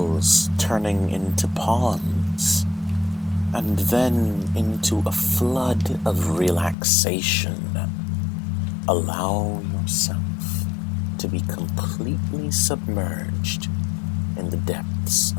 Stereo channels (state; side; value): drops out; right; at 6.8 s